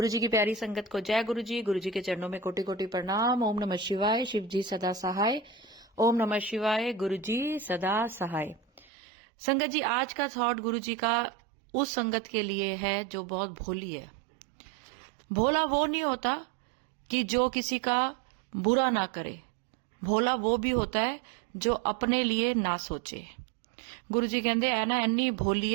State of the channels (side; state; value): left; drops out; at 8.8 s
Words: जी की प्यारी संगत को जय गुरु जी। गुरु जी के चरणों में कोटि कोटि प्रणाम। ओम नमः शिवाय। शिव जी सदा सहाय। ओम नमः शिवाय। गुरु जी सदा सहाय। संगत जी, आज का थॉट गुरु जी का उस संगत के लिए है जो बहुत भोली है। भोला वो नहीं होता कि जो किसी का बुरा ना करे। भोला वो भी होता है जो अपने लिए ना सोचे। गुरु जी कहते है ना, इन्नी भोली